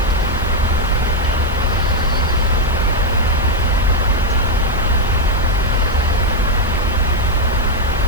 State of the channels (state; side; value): noise; left; hiss, 23 dB below the sound